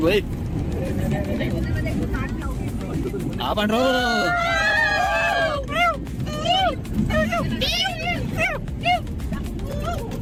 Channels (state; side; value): identical; both; correlation 1.00